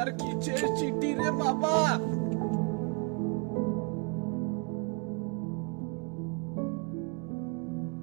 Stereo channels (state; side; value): quieter; left; 32.5 dB